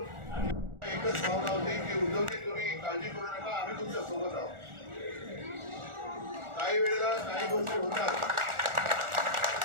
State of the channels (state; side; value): late; left; 1.4 ms